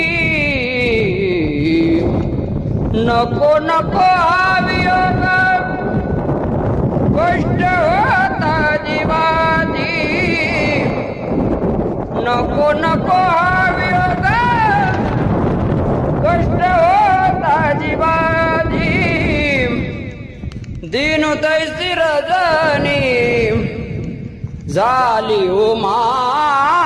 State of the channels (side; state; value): both; identical; correlation 1.00